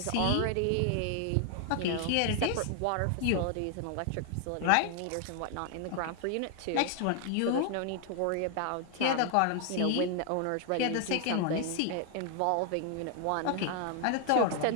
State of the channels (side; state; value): both; different; correlation 0.00